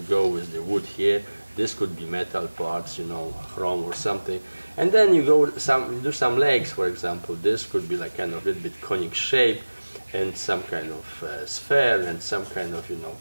go with the wood here. This could be metal parts, you know, chrome or something. And then you go you do some legs, for example. This could be like kind of a little bit conic shape, and some kind of sphere, and some kind of, you know,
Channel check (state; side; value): inverted; both; correlation -1.00